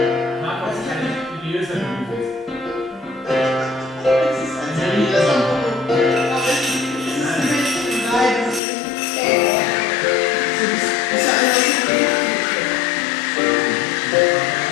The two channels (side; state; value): right; drops out; at 8.6 s